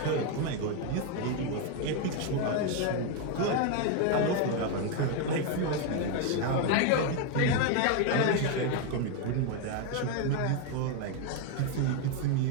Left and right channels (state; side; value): different; both; correlation 0.01